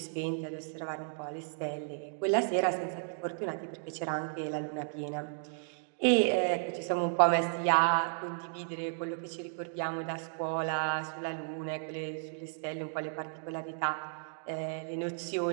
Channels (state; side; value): silent; left; digital silence